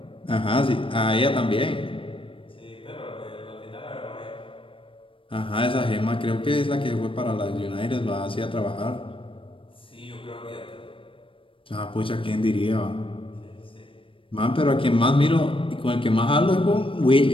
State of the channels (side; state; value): right; late; 0.25 ms